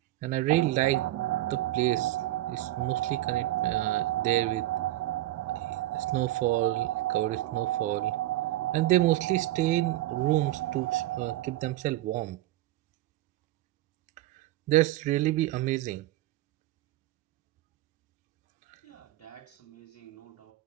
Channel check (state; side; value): quieter; left; 15.9 dB